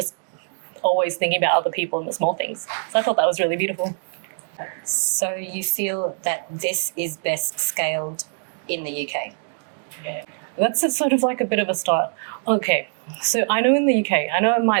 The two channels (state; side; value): silent; left; digital silence